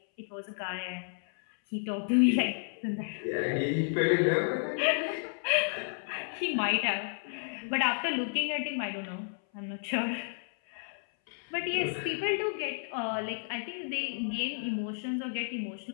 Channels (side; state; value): right; silent; 57 dB below the other